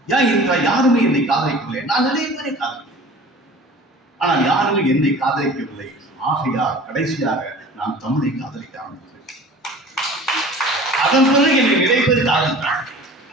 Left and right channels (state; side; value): normal; both; correlation 0.43